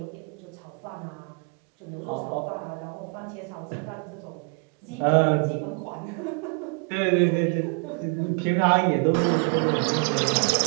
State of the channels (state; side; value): quieter; left; 35.1 dB